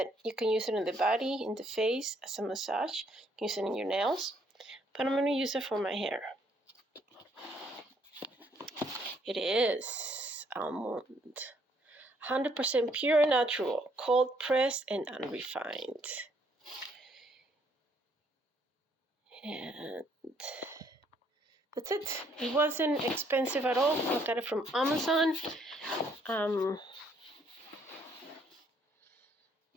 you can use it in the body, in the face, as a massage. You can use it in your nails, but I'm going to use it for my hair. It is almond. 100% pure and natural, cold pressed and unrefined. And that's it. It wasn't expensive at all. I got it from Amazon.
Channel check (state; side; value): normal; both; correlation 0.67